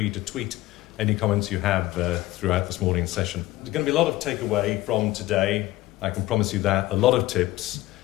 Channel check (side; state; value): right; quieter; 17.4 dB